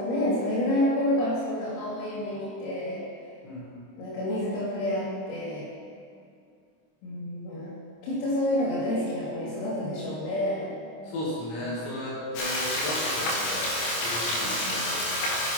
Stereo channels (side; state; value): right; late; 26 ms